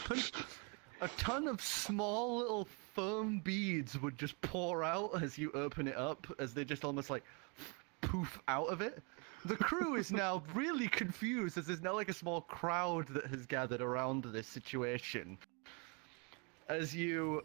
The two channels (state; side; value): quieter; left; 33.0 dB